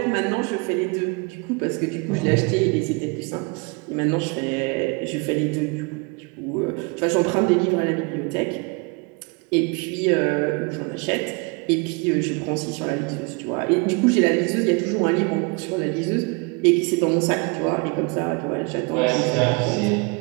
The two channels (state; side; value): quieter; left; 30.2 dB